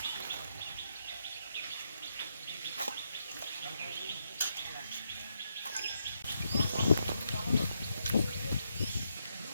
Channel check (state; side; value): inverted; both; correlation -0.81